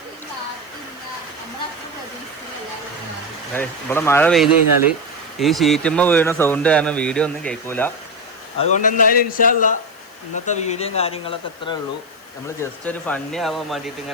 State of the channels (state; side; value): noise; left; hiss, 28 dB below the sound